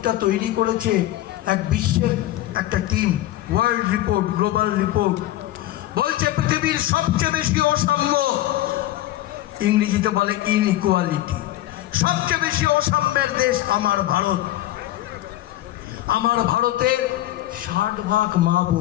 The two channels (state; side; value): quieter; right; 15.0 dB